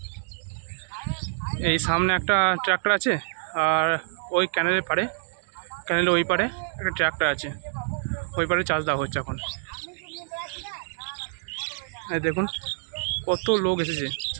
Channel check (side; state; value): left; silent; digital silence